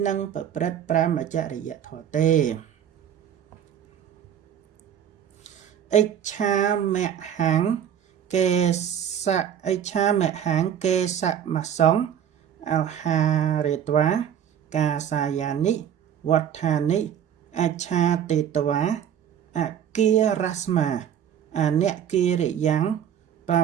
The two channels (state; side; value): quieter; left; 9.3 dB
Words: នឹងប្រព្រឹត្តប្រមចរិយធម៌ទេអិច្ឆាមហੰកេសៈអិច្ឆាមហੰកេសមសង្ឃអហារេត្វាកាសាយានិវត្ថានិអច្ឆាតេតវាអគារស្មាអនគិរិយ៉ាងប